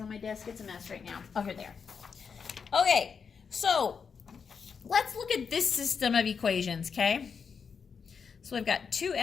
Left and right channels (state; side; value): quieter; right; 6.0 dB